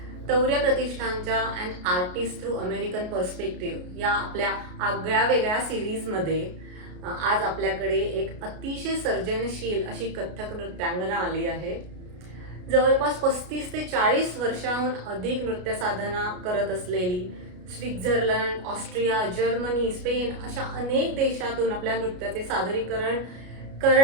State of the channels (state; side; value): late; left; 33 ms